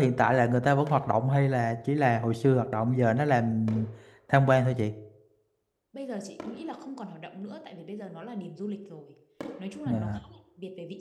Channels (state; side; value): identical; both; correlation 1.00